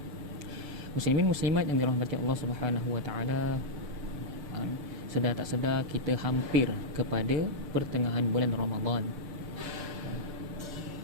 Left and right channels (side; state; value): left; late; 6.8 ms